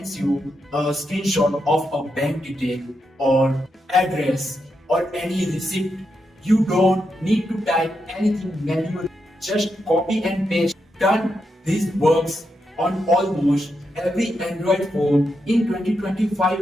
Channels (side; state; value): both; normal; correlation 0.84